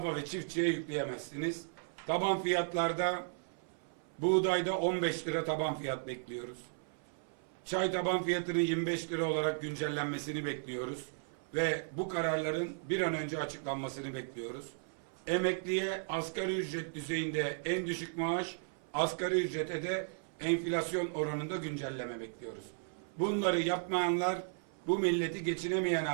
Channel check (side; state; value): left; silent; 54 dB below the other